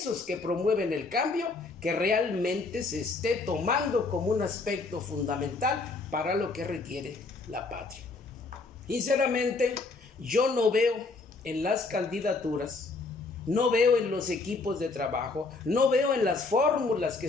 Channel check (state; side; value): quieter; right; 3.7 dB